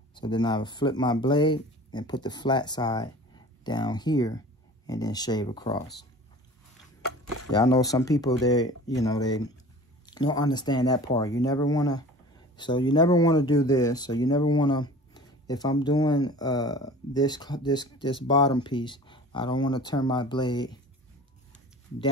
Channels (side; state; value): both; normal; correlation 0.41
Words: so then I would flip my blade and put the flat side down here and then shave across. Yeah, I know some people, they don't understand that part. You never want to do this. So you never want to, if I'm doing this bottom piece, I don't want to turn my blade